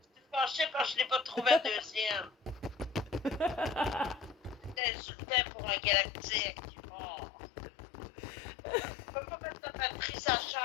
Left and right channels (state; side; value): drops out; right; at 4.8 s